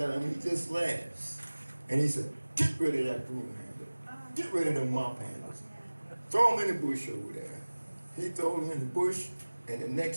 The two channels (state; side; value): inverted; both; correlation -1.00